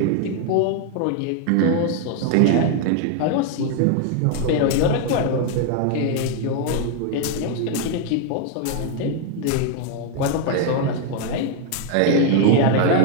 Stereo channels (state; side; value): different; both; correlation 0.00